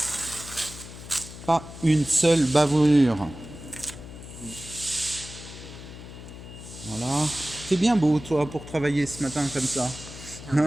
Pas une seule bavure. Voilà. C'est bien beau, toi, pour travailler ce matin comme ça.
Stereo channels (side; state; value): left; noise; hum, 14 dB below the sound